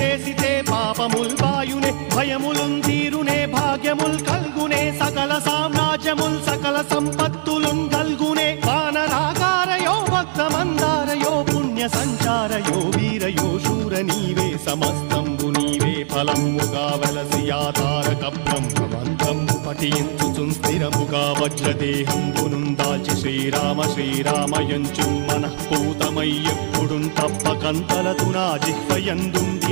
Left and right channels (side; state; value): left; silent; 66 dB below the other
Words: పాపముల్ వాయునే భయములుం తీరునే భాగ్యముల్ కల్గునే సకల సామ్రాజ్యముల్ సకల సంపత్తులుం కల్గునే వానరాకారయో భక్తమందారయో పుణ్య సంచారయో వీరయో శూర నీవే సమస్తంబు నీవే ఫలముగా వలసి ఆధారక బ్రహ్మమంత్రంబు పఠించుచుం స్థిరముగా వజ్రదేహంబునుం దాచి శ్రీరామ శ్రీరామయంచు మనఃపూతమై ఎప్పుడుం తప్పకంతలతు నా చిత్వయందుండి